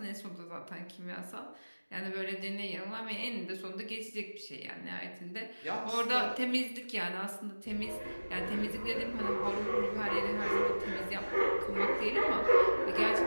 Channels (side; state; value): both; inverted; correlation -1.00